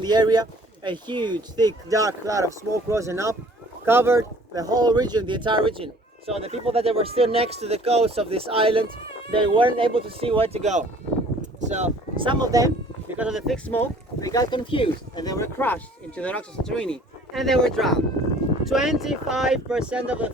the area, a huge, thick, dark cloud of smoke rose up, covered the whole region, the entire region. So the people that were still next to the coast of this island, they weren't able to see where to go. So some of them, because of the thick smoke, they got confused and they were crushed into the rocks of Santorini and they were drowned. 25% of the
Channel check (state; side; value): normal; both; correlation 0.53